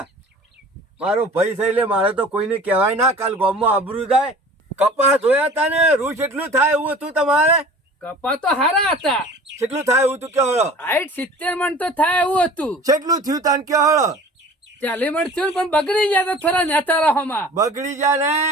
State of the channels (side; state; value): both; normal; correlation 0.43